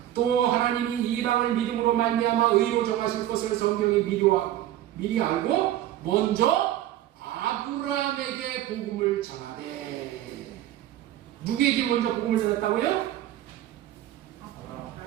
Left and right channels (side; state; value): left; quieter; 13.1 dB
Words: 또 하나님이 이방을 믿음으로 말미암아 의로 정하실 것을 성경이 미리 알고 먼저 아브라함에게 복음을 전하되. 누구에게 먼저 복음을 전했다고요?